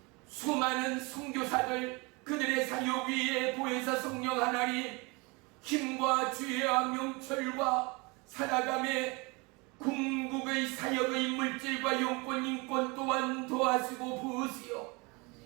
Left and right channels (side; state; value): left; quieter; 27.6 dB